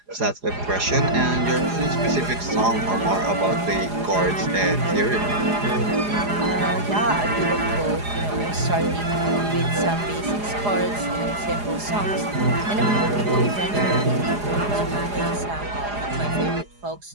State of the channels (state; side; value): late; left; 4.9 ms